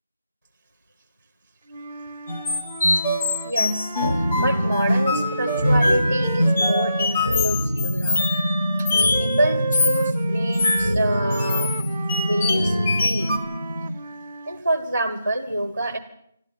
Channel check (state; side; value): inverted; both; correlation -0.83